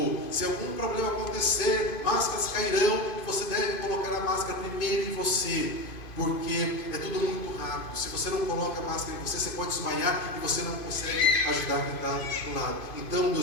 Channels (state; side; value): late; right; 2.5 ms